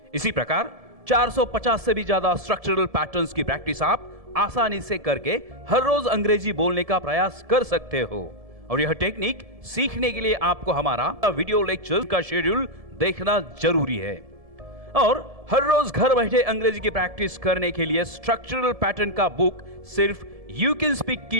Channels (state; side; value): late; left; 1.7 ms